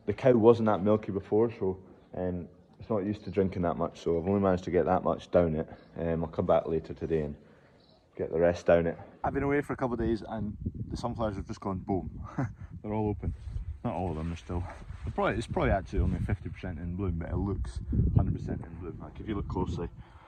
The cow wasn't that milky before, so it's not used to drinking that much, so I've only managed to get that much down it. I'll come back later today and get the rest down it. I've been away for a couple of days and the sunflowers have just gone boom. They're all open. Not all of them, it's probably actually only 50% in bloom, but it looks 100% in bloom. Like if you look closely,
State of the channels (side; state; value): both; identical; correlation 1.00